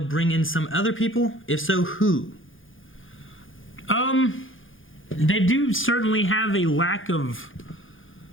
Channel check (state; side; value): late; right; 0.58 ms